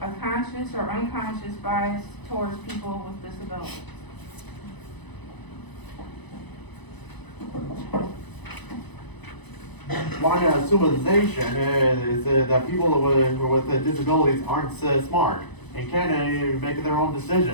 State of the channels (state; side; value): late; right; 1.0 ms